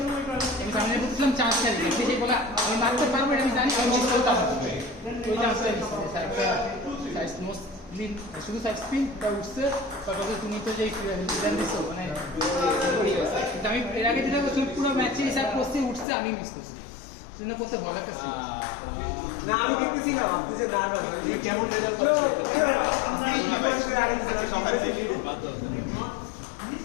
আমি সামনে বলছিলাম চার্জটা দিই সে বলে আমি মারতে পারবো এটা আমি জানি আমি মিস করতে পারবো ওই চার্জটা মিস করছি স্যারটা সাইজ মোস্টলি শুধু সাইড স্পিনটা উঠছে তারপরে তুমি তো যে ডিজাইন দিছো মানে কিন্তু আমি এর আগে যেটা করছি পুরো ম্যাচে হিসাব করছি উঠছে আমি মিস করছি শুনে করতে ভয় লাগতেছে না আমি দেখতেছি না আপনি যে না না কেমন রেজাল্ট পাচ্ছে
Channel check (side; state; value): right; drops out; at 16.1 s